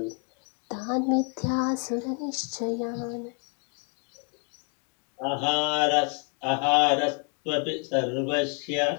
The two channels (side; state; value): right; quieter; 38.4 dB